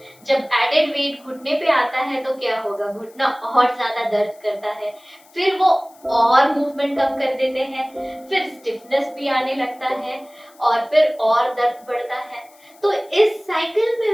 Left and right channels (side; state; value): left; noise; hiss, 28 dB below the sound